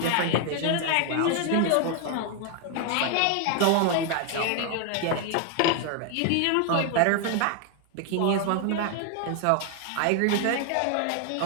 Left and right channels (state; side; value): different; both; correlation 0.01